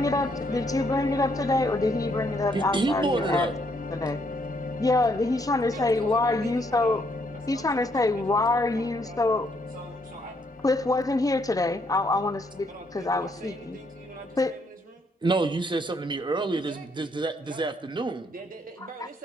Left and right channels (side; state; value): both; normal; correlation 0.72